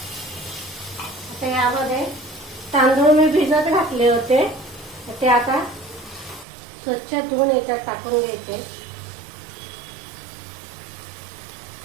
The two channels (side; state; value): left; drops out; at 6.5 s